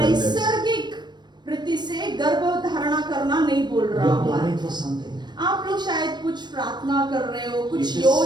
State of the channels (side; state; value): left; late; 0.21 ms